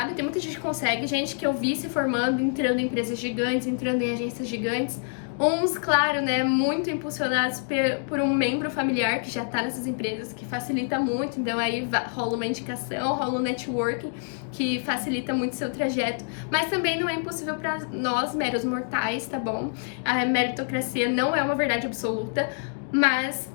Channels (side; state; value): right; silent; 61 dB below the other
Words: Tem muita gente que consegue, gente que eu vi se formando, entrando em empresas gigantes, entrando em agências gigantes. Uns, claro, né, muito impulsionados por um membro familiar que já tá nessas empresas, que facilita muito, então aí rola uma indicação, rola um networking, que facilita muito seu trajeto, mas também não é impossível para nós, meros mortais, tá bom? A meritocracia não é uma verdade absoluta, mas